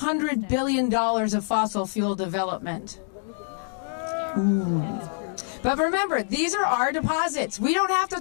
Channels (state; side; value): silent; right; digital silence